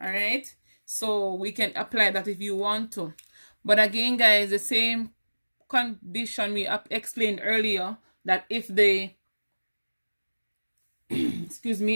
right. So we can apply that if you want to. But again, guys, the same condition we explained earlier, that if the excuse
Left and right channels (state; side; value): inverted; both; correlation -1.00